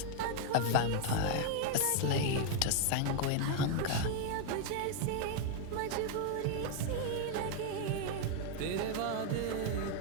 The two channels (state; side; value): different; both; correlation 0.00